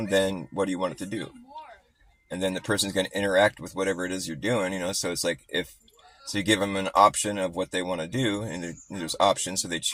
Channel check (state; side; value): identical; both; correlation 1.00